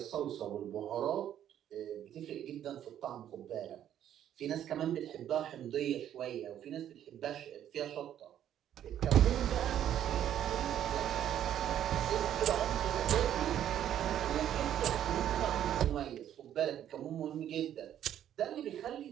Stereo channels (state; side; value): quieter; left; 10.7 dB